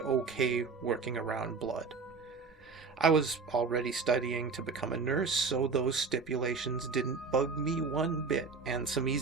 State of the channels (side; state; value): left; quieter; 4.8 dB